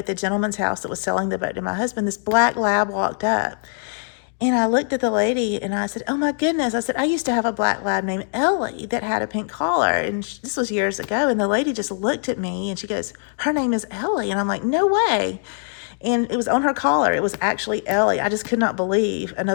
the gentleman's house that was selling the boat to my husband, this black lab walked up. And I looked at the lady and I said, oh my goodness. I said, I used to have a black lab named Ellie that had a pink collar. And this was years ago. And the lady just looked at me and she goes, her name is Ellie. And I'm like, no way. And it was on her collar. It was actually Ellie. I just could not believe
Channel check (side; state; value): right; silent; digital silence